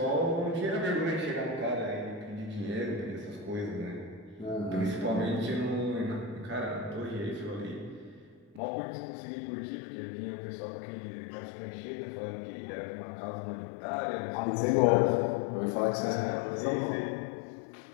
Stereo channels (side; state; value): right; drops out; at 8.6 s